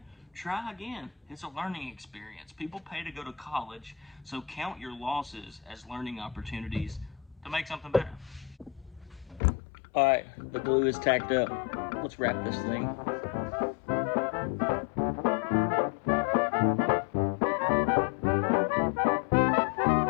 try again. It's a learning experience. People pay to go to college, so count your losses as learning opportunities to make something better. All right, the glue is tacked up. Let's wrap this thing.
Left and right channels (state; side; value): drops out; right; at 9.4 s